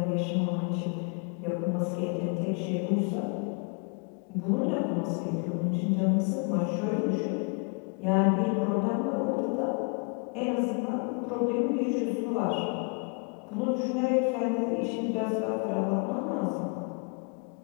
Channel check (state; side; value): quieter; right; 37.4 dB